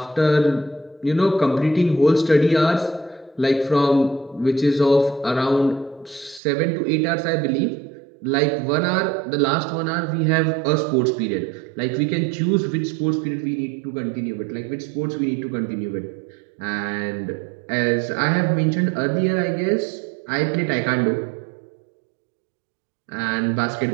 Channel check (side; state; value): left; drops out; at 6.4 s